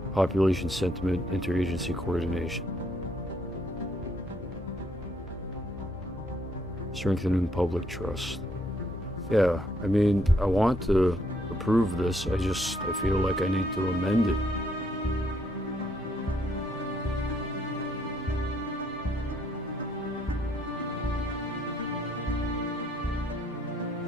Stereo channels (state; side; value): normal; both; correlation 0.70